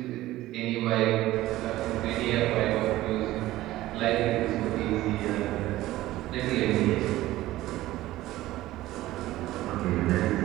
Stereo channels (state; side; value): quieter; left; 16.2 dB